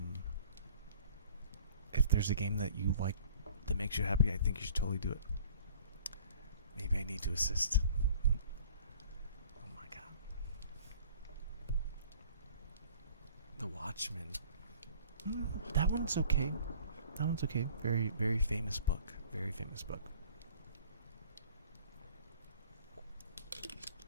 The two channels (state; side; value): inverted; both; correlation -0.49